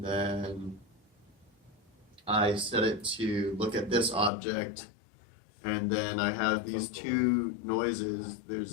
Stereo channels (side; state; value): right; drops out; at 4.3 s